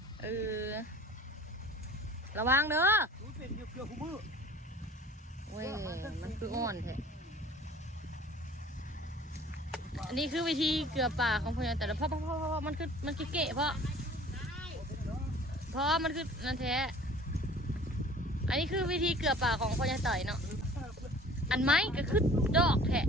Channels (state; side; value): normal; both; correlation 0.48